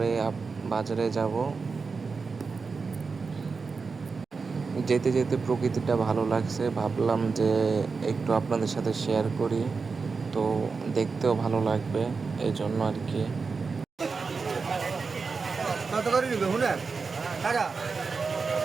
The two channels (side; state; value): left; quieter; 4.8 dB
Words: বাজারে যাব। যেতে যেতে প্রকৃতিটা ভালো লাগছে, ভাবলাম যে একটু আপনাদের সাথে শেয়ার করি, তো দেখতেও ভালো লাগবে, এই জন্য আর কি। কত করে নিবে হুনে টাকা